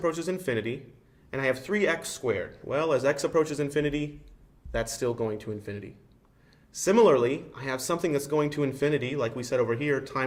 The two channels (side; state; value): both; identical; correlation 1.00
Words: infinity, and I have 3x squared. Well, as x approaches infinity, that's still going to infinity. Similarly, I have something that's going to infinity, like we said over here,